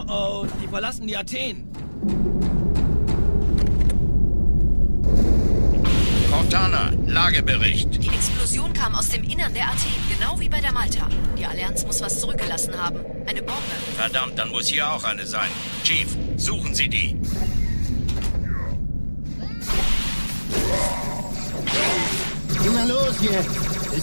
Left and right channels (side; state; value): both; inverted; correlation -1.00